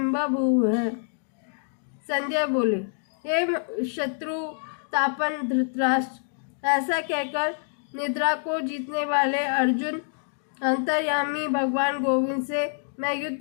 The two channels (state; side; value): silent; right; 61 dB below the other